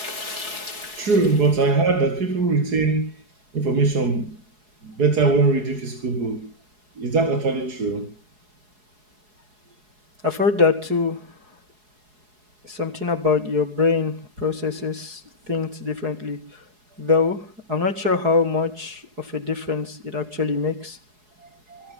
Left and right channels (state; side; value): late; left; 4.7 ms